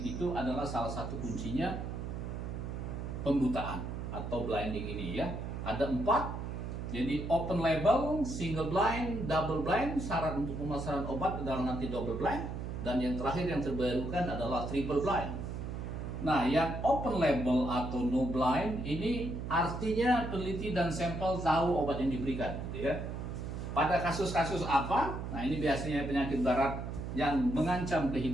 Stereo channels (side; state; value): right; noise; hum, 5 dB below the sound